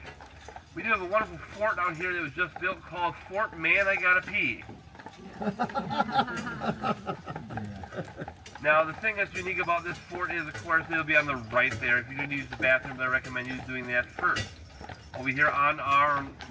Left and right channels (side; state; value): both; identical; correlation 1.00